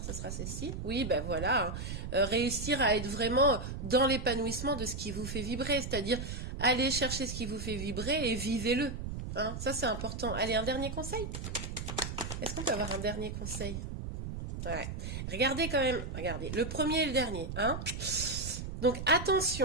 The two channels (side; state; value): right; noise; rumble, 6 dB below the sound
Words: ce sera ceci. Oui, ben voilà, hein. Réussir à être vraiment dans l'épanouissement de ce qui vous fait vibrer, c'est-à-dire aller chercher ce qui vous fait vibrer et vivez-le, hein. Ça, c'est important. Allez, un dernier conseil? Est-ce qu'on peut avoir un dernier conseil? Ouais. Regardez quand même, regardez, le premier et le dernier, hein. Donc